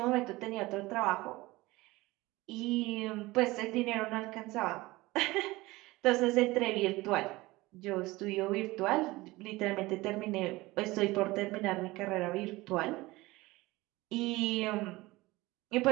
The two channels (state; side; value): quieter; left; 20.3 dB